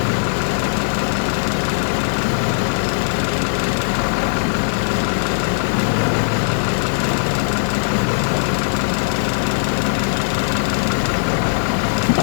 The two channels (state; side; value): silent; right; digital silence